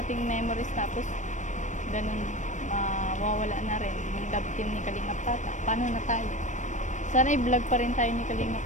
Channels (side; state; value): right; late; 0.35 ms